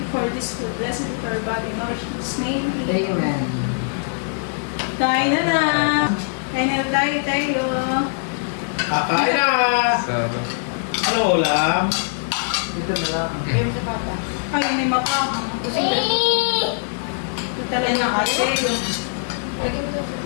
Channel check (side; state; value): right; silent; digital silence